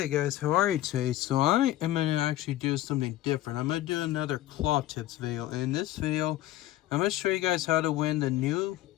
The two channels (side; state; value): right; quieter; 14.7 dB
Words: guys, how are you today? So I am going to actually do something different. I'm going to do another claw tips video. And in this video, I'm going to show you guys how to win the new